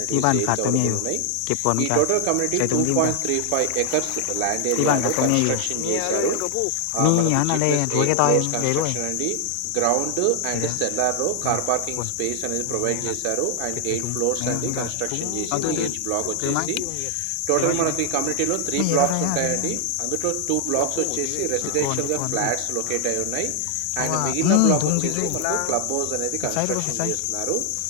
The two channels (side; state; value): both; different; correlation 0.00